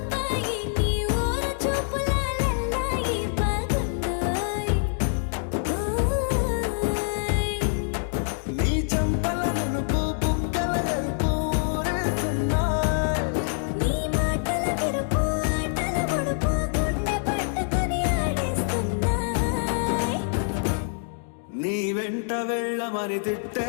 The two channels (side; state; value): right; silent; digital silence